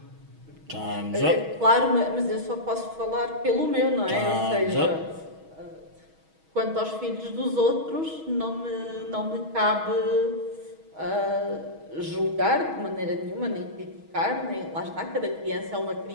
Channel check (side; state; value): left; late; 6.3 ms